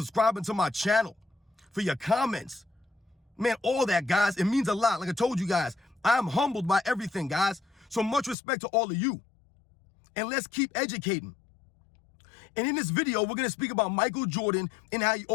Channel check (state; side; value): drops out; right; at 8.3 s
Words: to my channel, for your comments. Man, all that, guys, it means a lot. Like I told you guys, I'm humbled by everything, guys. So much respect to all of you. And let's keep educating. And in this video, we're going to speak about Michael Jordan and how he